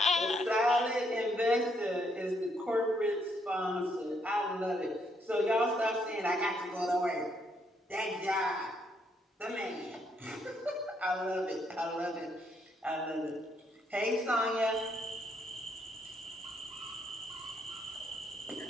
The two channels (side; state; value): both; normal; correlation 0.73